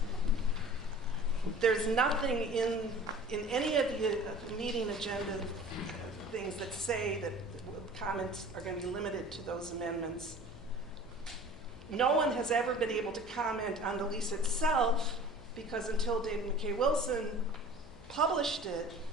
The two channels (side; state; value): left; noise; hum, 19 dB below the sound